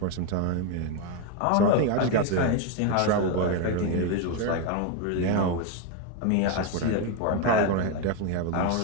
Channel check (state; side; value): different; both; correlation 0.02